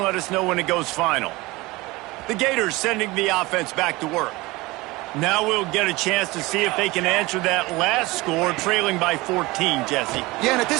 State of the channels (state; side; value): quieter; left; 21.6 dB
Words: let us know when it goes final. The Gators sending the offense back to work. Now we'll get a chance to see if they can answer that last score, trailing by 14, Jesse. Yeah, and at